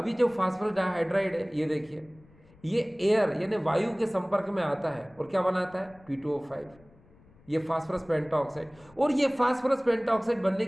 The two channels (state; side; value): noise; left; rumble, 28 dB below the sound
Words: ये जो फास्फोरस डाइहाइड्राइड है ये देखिए, ये एयर यानी वायु के संपर्क में आता है और क्या बनाता है? P2O5, ये फास्फोरस पेंटाऑक्साइड। और ये फास्फोरस पेंटाऑक्साइड बनने